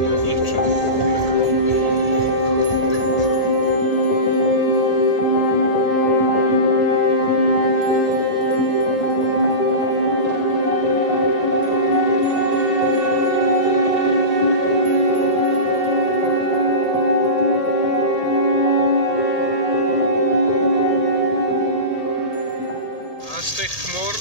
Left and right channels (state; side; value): late; right; 1.8 ms